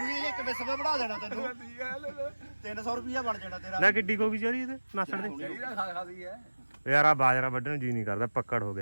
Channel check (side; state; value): both; inverted; correlation -1.00